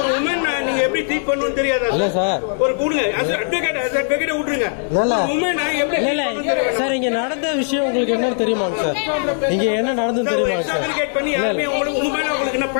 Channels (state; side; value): silent; right; 61 dB below the other